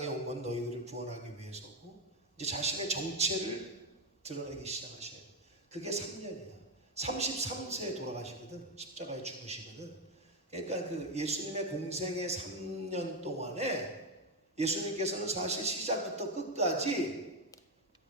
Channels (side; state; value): both; normal; correlation 0.08